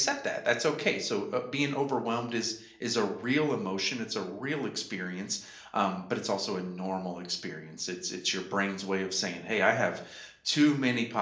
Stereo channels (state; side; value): identical; both; correlation 1.00